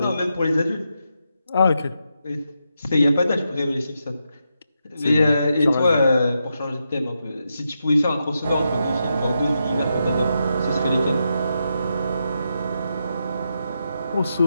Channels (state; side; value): inverted; both; correlation -0.85